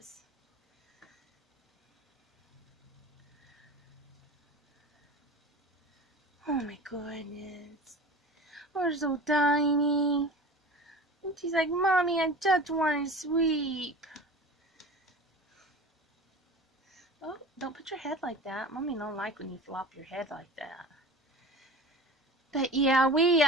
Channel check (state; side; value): normal; both; correlation 0.36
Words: Oh my goodness. We're so tiny. And she's like, Mommy, I just want to sleep. Oh, don't put your head like that. Mommy don't like when you flop your head like that. But yeah, we